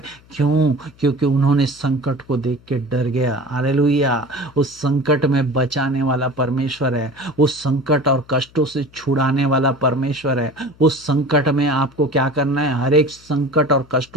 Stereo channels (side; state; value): left; noise; hum, 27 dB below the sound